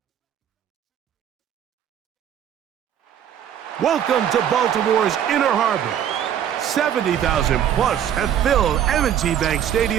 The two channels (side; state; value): left; quieter; 9.7 dB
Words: Welcome to Baltimore's Inner Harbor. 70,000 plus have filled M&T Bank